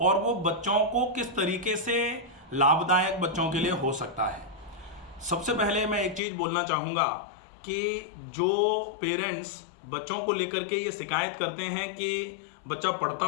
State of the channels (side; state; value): right; drops out; at 6.2 s